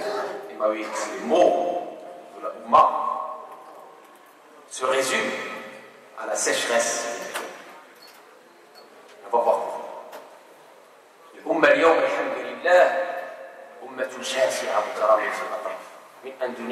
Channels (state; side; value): identical; both; correlation 1.00